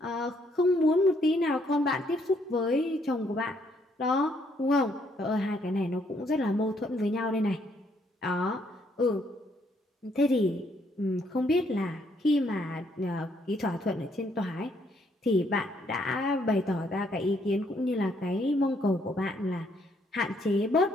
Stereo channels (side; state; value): both; normal; correlation 0.70